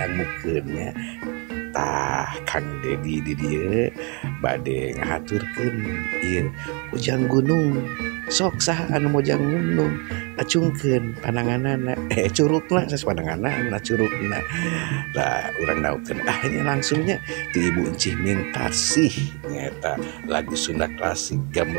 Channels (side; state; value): left; quieter; 33.2 dB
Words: nya. Tah Kang Dedi di dieu bade ngahaturkeun ieu Ujang Gunung. Sok saha anu mojang gunung acungkeun pananganana curugna sanes pananganana curugna. Lah urang naukeun nya langsungnya ti Ibu Encih Mintasih nyata lagu Sunda klasik